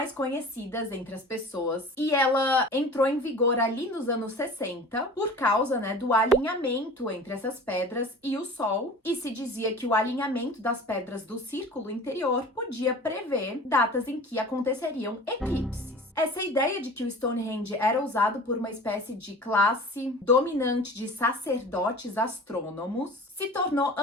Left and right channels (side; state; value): both; normal; correlation 0.40